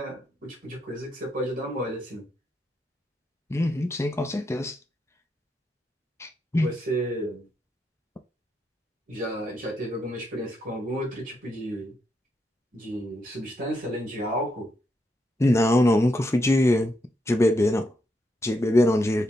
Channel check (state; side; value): normal; both; correlation 0.81